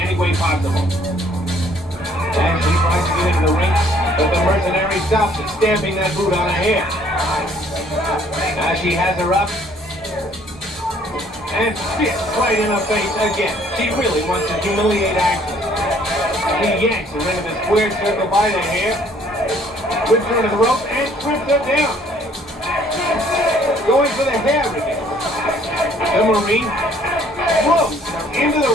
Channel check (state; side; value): normal; both; correlation 0.60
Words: way possible. Ashley tries to get into the ring, but the mercenary stops it, stamping that boot on her hair. Now she has her up, and spits right in her face again. She really wants to humiliate Ashley. He yanks her into the square circle by the hair, whips her into the rope, and trips her down. Going for the hair again. The Marine throws her into the